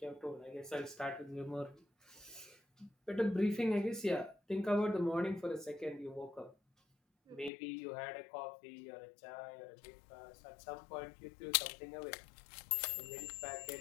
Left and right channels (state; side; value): drops out; right; at 7.5 s